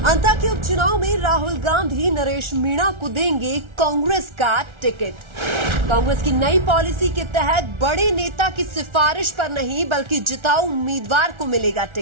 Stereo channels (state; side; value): late; left; 1.4 ms